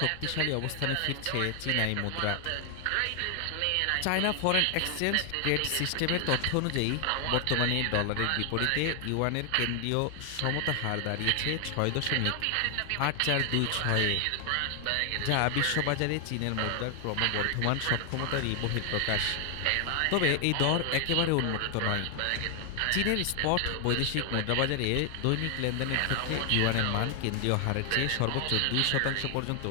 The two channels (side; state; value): both; different; correlation 0.00